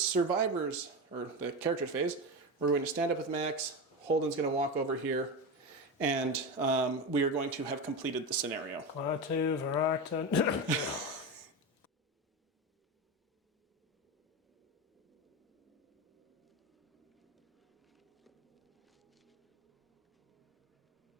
or the characters phase, we're going to stand up with Max, Holden's going to walk over here, and we are going to have completed the scenario. Klaatu, Varata.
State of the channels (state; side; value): normal; both; correlation 0.20